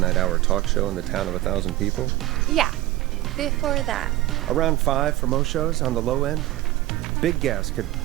hour talk show in the town of 1,000 people? Yeah. Before that. Around 5 for most shows on the low end. Big guests could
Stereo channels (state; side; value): quieter; left; 16.7 dB